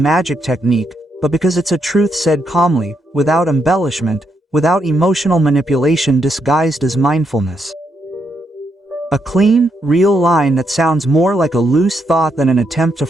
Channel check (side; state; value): both; normal; correlation 0.79